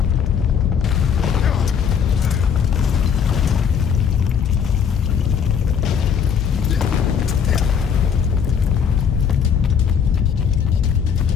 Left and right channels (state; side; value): quieter; right; 7.3 dB